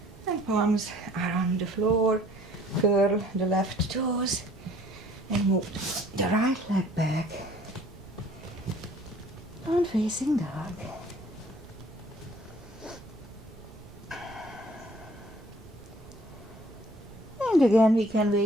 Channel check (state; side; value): noise; right; rumble, 21 dB below the sound